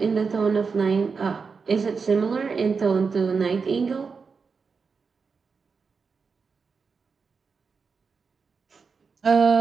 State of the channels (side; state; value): left; quieter; 5.2 dB